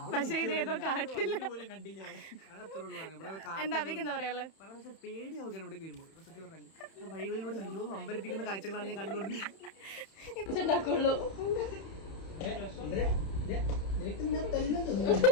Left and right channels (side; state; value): right; late; 31 ms